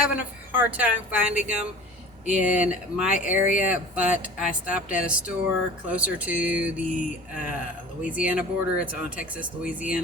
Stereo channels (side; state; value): both; normal; correlation 0.40